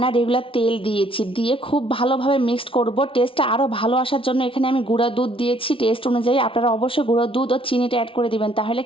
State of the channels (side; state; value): right; late; 0.26 ms